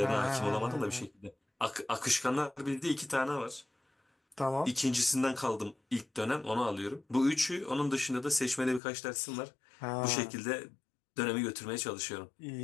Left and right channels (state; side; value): drops out; right; at 8.8 s